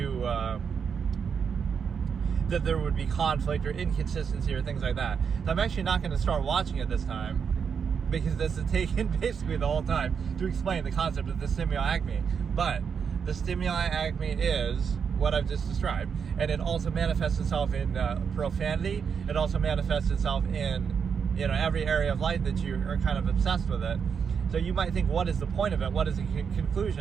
that there would be conflict or inconsistency or things like that. So I'm actually not going to start watching it this time, because this is taken basically the whole time to explain the concept of the Stimuli Acme. But the Stimuli Acme is what I've just described, and it also manifests itself in profanity. It also manifests itself in every area of life that you are kind of obsessed with it. So you might think, what is the point of it? What is the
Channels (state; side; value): quieter; left; 6.6 dB